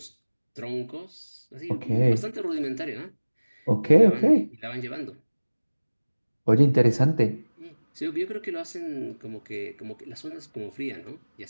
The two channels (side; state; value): both; inverted; correlation -1.00